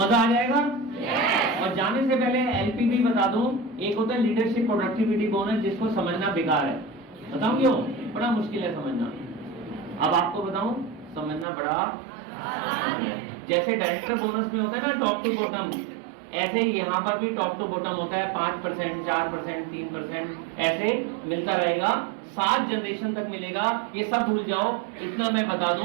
आ जाएगा। और जाने से पहले एलपीबी बता दूं, एक होता है लीडरशिप प्रोडक्टिविटी बोनस, जिसको समझना बेकार है। बताऊं क्यों? बड़ा मुश्किल है समझना। अब आपको बताऊं, समझना बड़ा जैसे डायरेक्टर बोनस में होता है ना टॉप टू बॉटम, ऐसे ही यहाँ पर भी टॉप टू बॉटम होता है। 5%, 4%, 3% ऐसे मिलता रहेगा, 7 जनरेशन तक मिलेगा। ये सब भूल जाओ, इतना मैं बता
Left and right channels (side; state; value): left; drops out; at 11.5 s